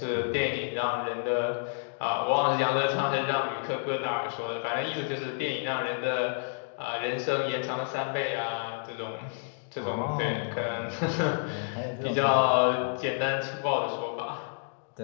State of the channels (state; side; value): silent; right; digital silence